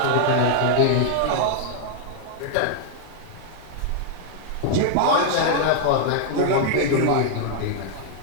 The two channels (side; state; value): both; different; correlation -0.01